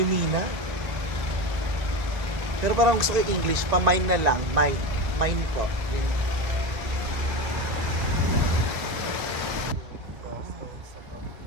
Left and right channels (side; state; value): left; late; 1.9 ms